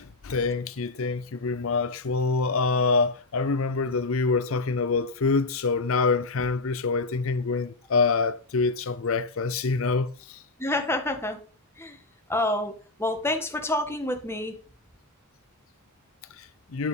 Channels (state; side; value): quieter; right; 3.4 dB